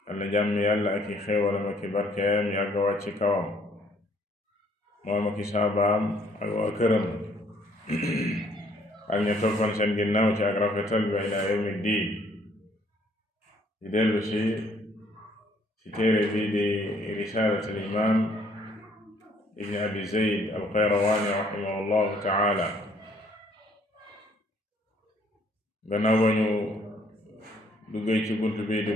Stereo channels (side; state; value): both; normal; correlation 0.63